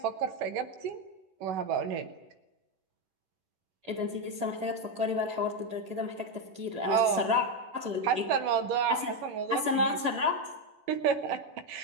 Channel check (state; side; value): late; left; 11 ms